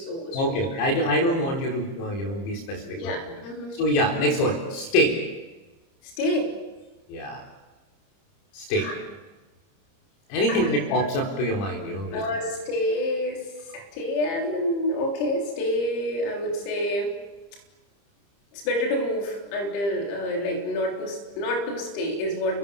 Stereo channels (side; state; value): right; late; 30 ms